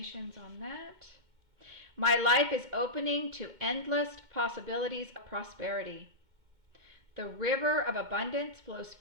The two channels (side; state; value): left; late; 2.2 ms